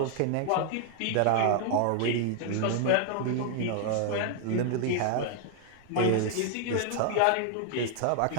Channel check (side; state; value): both; different; correlation 0.00